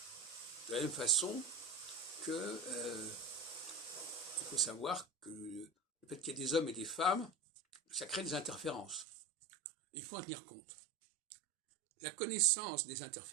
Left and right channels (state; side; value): drops out; left; at 9.1 s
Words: De la même façon que il faut savoir que le fait qu'il y ait des hommes et des femmes, ça crée des interférences. Il faut en tenir compte. La connaissance des